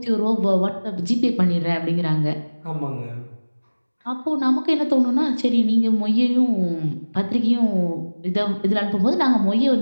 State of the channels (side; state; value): both; inverted; correlation -1.00